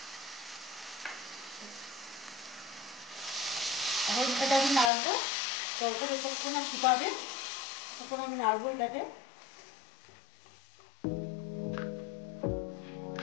এখন এটাকে আমি নাড়বো, তখন যতক্ষণ শুকাবে তখন আমি নাড়বো এটাকে।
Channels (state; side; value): drops out; right; at 4.9 s